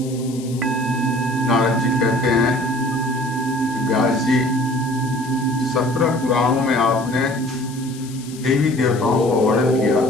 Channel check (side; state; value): left; noise; hiss, 18 dB below the sound